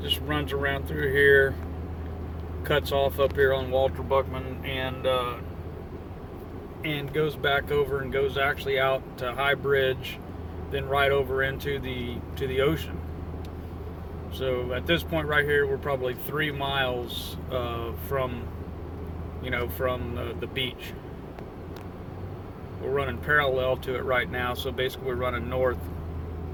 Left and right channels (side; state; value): both; identical; correlation 1.00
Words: just runs around through here, cuts off up here on Walter Buckman, and goes back over and goes actually out to High Bridge, then right over into the ocean. So at this point right here, we're probably 3 miles from the beach. We're running parallel to it right now, so basically we're running north.